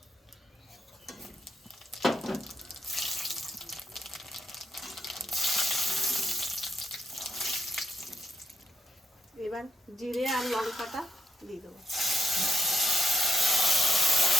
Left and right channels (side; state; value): both; normal; correlation 0.79